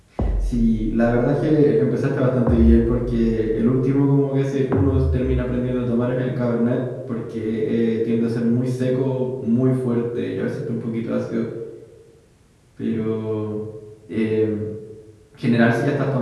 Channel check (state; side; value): identical; both; correlation 1.00